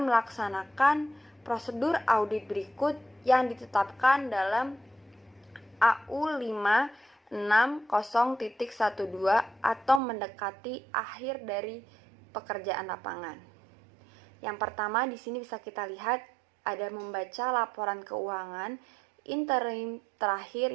melaksanakan prosedur audit berikut yang ditetapkan dalam AU 560.12 atau mendekati akhir dari pekerjaan lapangan. Yang pertama di sini bisa kita lihat ada membaca laporan keuangan interim terakhir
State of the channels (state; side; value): drops out; left; at 10.0 s